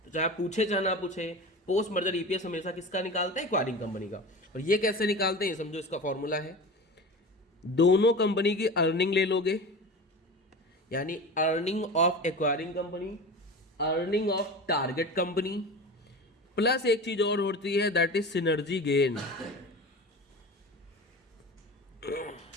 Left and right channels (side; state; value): both; normal; correlation 0.32